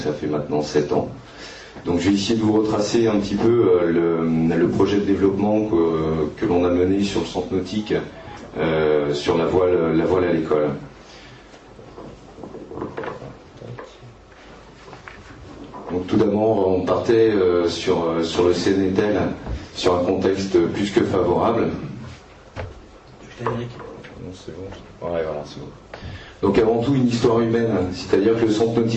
fait maintenant 7 ans. Donc je vais essayer de vous retracer un petit peu le projet de développement que l'on a mené sur le centre nautique, sur la voile à l'école. Donc tout d'abord, on partait sur le CNETEL, sur un contexte plus que favorable. Non, c'est bon. Ouais, voilà, c'est bon. Donc avant tout une histoire humaine, c'est-à-dire que le centre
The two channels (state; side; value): identical; both; correlation 1.00